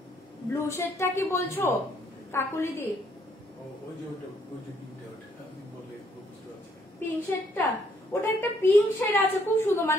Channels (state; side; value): normal; both; correlation 0.68